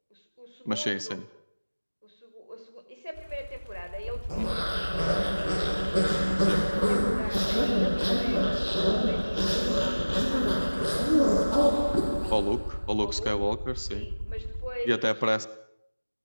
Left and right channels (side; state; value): both; inverted; correlation -1.00